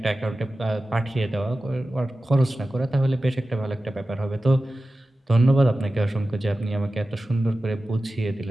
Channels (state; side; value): normal; both; correlation 0.95